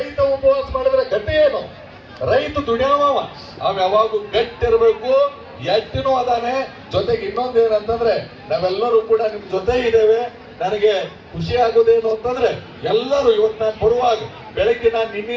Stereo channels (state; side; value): identical; both; correlation 1.00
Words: ಉಪವಾಸ ಮಾಡಿದ್ರೆ ಗಟ್ಟಿ ಏನು? ರೈತ ದುಡಿಯವ, ಅವ್ ಯಾವಾಗೂ ಗಟ್ಟಿರ್ಬೇಕು, ಎಟ್ಟಿನೂ ಅದಾನೆ. ಜೊತೆಗೆ ಇನ್ನೊಂದು ಏನಂತಂದ್ರೆ ನಾವೆಲ್ಲರೂ ಕೂಡ ನಿಮ್ ಜೊತೆ ಇದ್ದೇವೆ. ನನಗೆ ಖುಷಿ ಆಗೋದೇನು ಅಂತಂದ್ರೆ ಎಲ್ಲರೂ ಇವತ್ತು ನಾನು ಬರುವಾಗ ಬೆಳಗ್ಗೆ ನಾನು